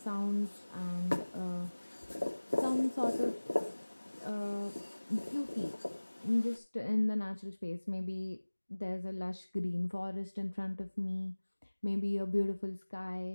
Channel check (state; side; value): inverted; both; correlation -1.00